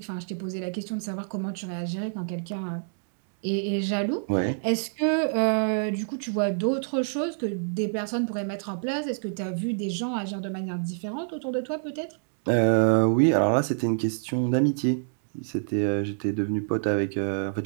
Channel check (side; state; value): left; silent; digital silence